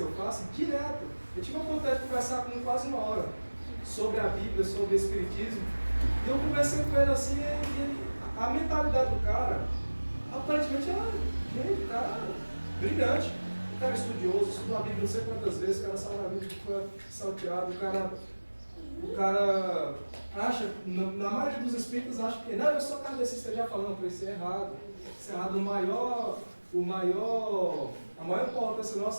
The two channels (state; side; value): inverted; both; correlation -1.00